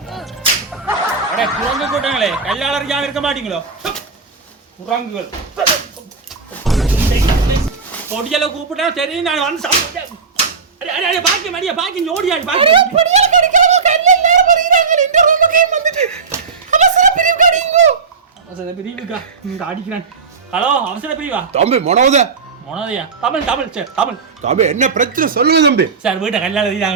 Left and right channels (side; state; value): left; quieter; 5.0 dB